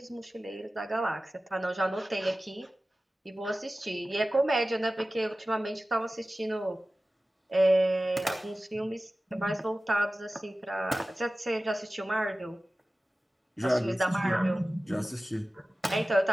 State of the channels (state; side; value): normal; both; correlation 0.96